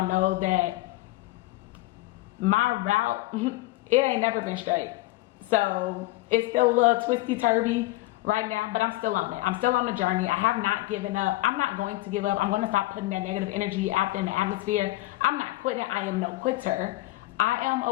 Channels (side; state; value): right; quieter; 18.9 dB